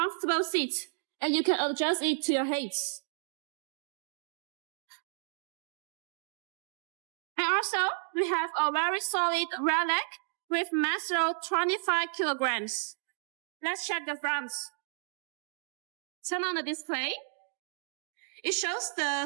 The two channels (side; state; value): left; silent; digital silence